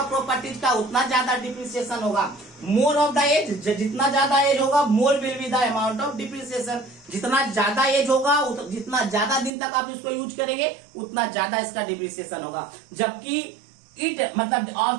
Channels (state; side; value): drops out; left; at 9.5 s